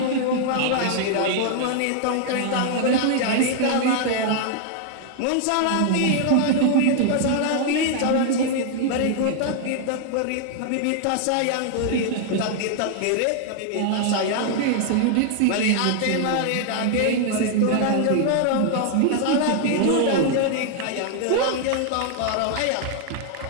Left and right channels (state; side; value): different; both; correlation 0.00